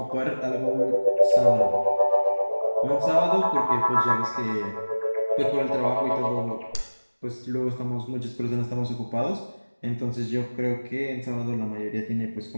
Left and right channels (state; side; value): inverted; both; correlation -1.00